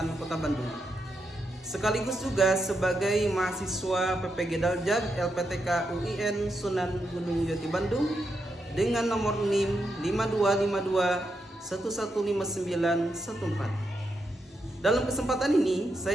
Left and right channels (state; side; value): normal; both; correlation 0.83